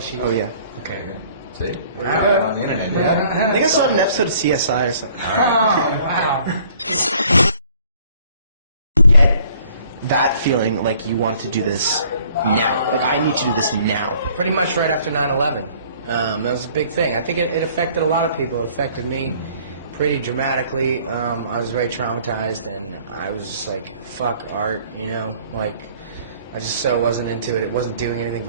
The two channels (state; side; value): inverted; both; correlation -0.58